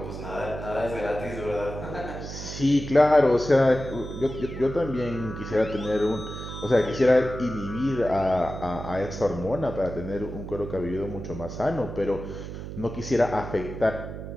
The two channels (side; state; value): right; noise; hum, 9 dB below the sound